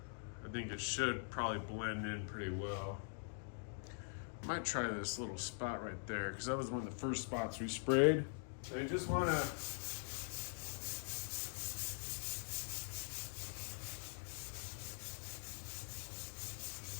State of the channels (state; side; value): silent; right; digital silence